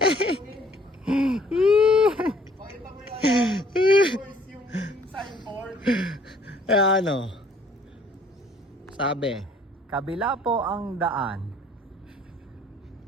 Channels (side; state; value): both; normal; correlation 0.59